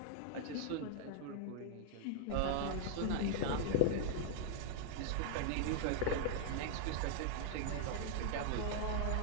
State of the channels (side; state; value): both; different; correlation 0.00